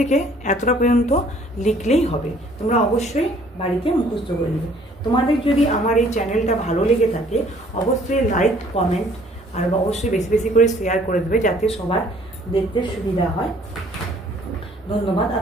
এতটা পর্যন্ত লিখলেই হবে। তোমরা অবশ্যই বাড়িতে মুখস্থ করে নেবে। তোমাদের যদি আমার এই চ্যানেলটা ভালো লেগে থাকে অবশ্যই লাইক কমেন্ট আর অবশ্যই বেশি বেশি করে শেয়ার করে দেবে যাতে সবার দেখতে সুবিধা হয়। ধন্যবাদ।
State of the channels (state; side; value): normal; both; correlation 0.58